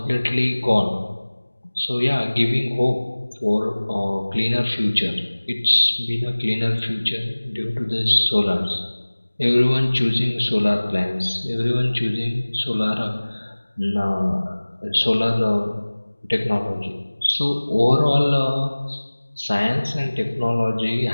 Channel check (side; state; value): both; inverted; correlation -1.00